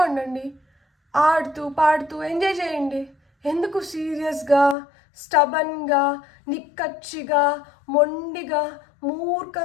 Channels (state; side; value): drops out; right; at 4.8 s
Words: ఉండండి, ఆడుతూ పాడుతూ ఎంజాయ్ చేయండి. ఎందుకు సీరియస్గా, స్టబన్గా, నిక్కచ్చిగా, మొండిగా,